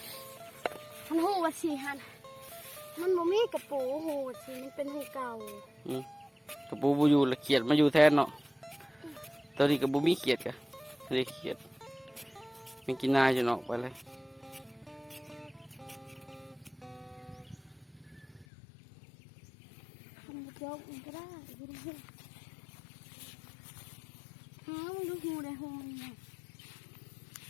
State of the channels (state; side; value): drops out; right; at 18.4 s